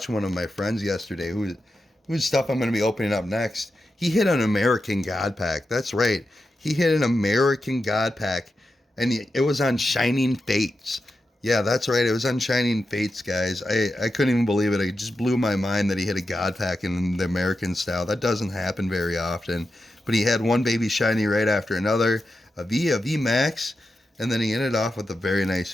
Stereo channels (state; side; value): normal; both; correlation 0.89